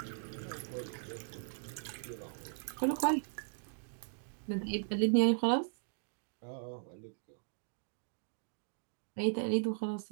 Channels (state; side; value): silent; left; digital silence